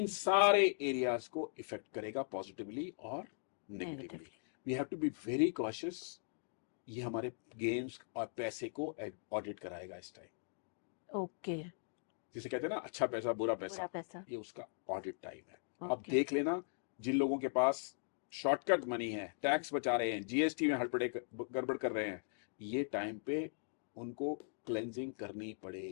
सारे एरियाज को इफेक्ट करेगा पॉजिटिवली और negatively. We have to be very cautious. ये हमारे गेम्स और पैसे को ऑडिट कराएगा इस टाइम। ओके। जिसे कहते हैं ना, अच्छा पैसा बुरा पूरा पैसा, पैसा। ये उसका ऑडिट टाइम है। अब ओके। देख लेना, जिन लोगों के पास शॉर्टकट मनी है, टैक्स बचा रहे हैं, जीएसटी में हड़बड़े गड़बड़ कर रहे हैं, ये टाइम पे उनको क्लेंजिंग करनी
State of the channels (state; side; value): silent; right; digital silence